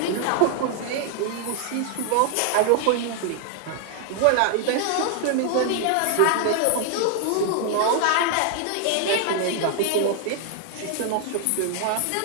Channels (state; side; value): different; both; correlation 0.00